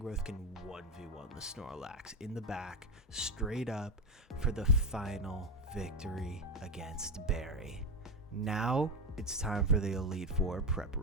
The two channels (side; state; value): both; normal; correlation 0.13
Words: can 1v1 the Snorlax in the back, straight up, for the final victory against Barry. Now, it's time for the Elite Four